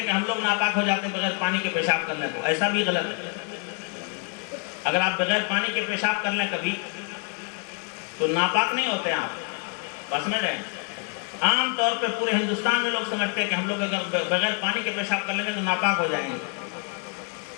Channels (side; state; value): right; quieter; 33.2 dB